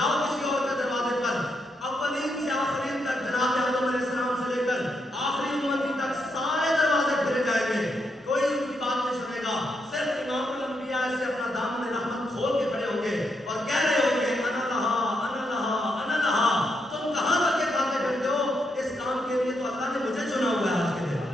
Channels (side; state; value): both; normal; correlation 0.80